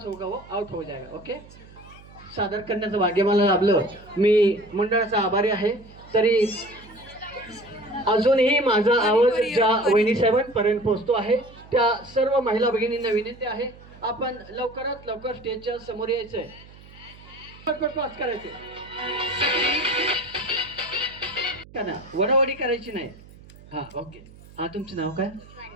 होगा वो आउट हो जाएगा. ओके, सादर करण्याचं भाग्य मला लाभलं. मी मंडळाचा आभारी आहे. तरी अजूनही माझा आवाज ज्या वहिनी साहेबांपर्यंत पोहोचतो आहे त्या सर्व महिला भगिनींना विनंती आहे, आपण लवकरात लवकर स्टेजच्या समोर यायचंय, पटपट पास करायचे का ना, वडावडी करायची नाही. हा ओके. हा तुमचं नाव काय?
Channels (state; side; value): noise; right; hum, 21 dB below the sound